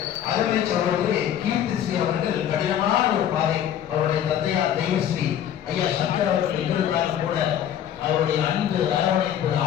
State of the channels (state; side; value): quieter; right; 10.2 dB